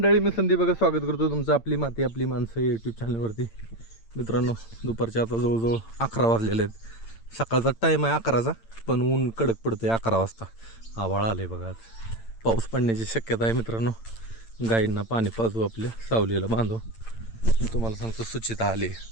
मी संदीप बघा स्वागत करतो तुमचं आपली माती आपली माणसं यूट्यूब चॅनलवरती. मित्रांनो, दुपारचे आता जवळजवळ 11 वाजलेले आहेत. सकाळचा टाईम आहे 11चा, पण ऊन कडक पडतं आहे 11 वाजता. आभाळ आले बघा, आज पाऊस पडण्याची शक्यता आहे. मित्रांनो, गाईंना पाणी पाजू, आपल्या सावलीला बांधू. तुम्हाला सांगतो सुचिता आली.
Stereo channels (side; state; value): right; late; 8.8 ms